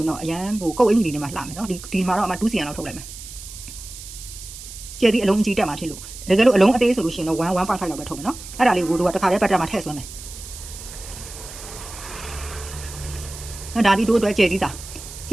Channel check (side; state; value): right; noise; hiss, 13 dB below the sound